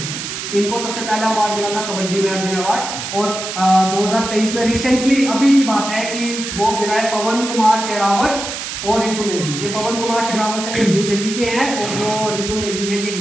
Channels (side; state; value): right; noise; hiss, 6 dB below the sound